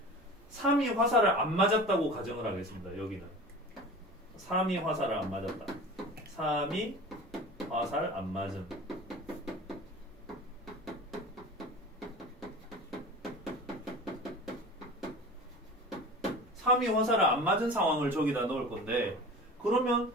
3이 화살을 안 맞았다고 가정을 하겠습니다. 여기는 3이 화살을 안 맞았다. 3이 화살 안 맞은. 삼이 화살을 안 맞은 상황을 저기다 넣을 건데 그러면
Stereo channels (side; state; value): both; normal; correlation 0.37